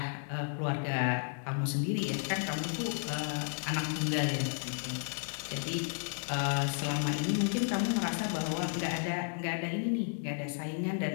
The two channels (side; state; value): right; silent; 56 dB below the other